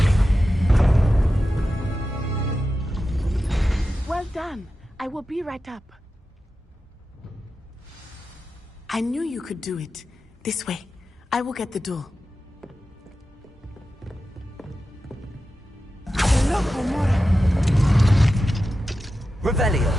Well done. I will be right up. I knew you could do it. This way. I will get the door. Revelio.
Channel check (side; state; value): both; normal; correlation 0.92